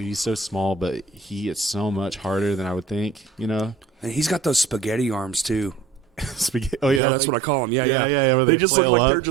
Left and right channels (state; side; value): drops out; left; at 7.0 s